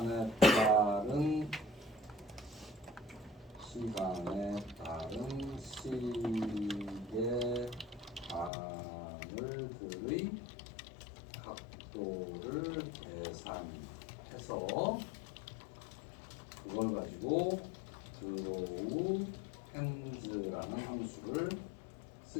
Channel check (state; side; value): drops out; right; at 8.5 s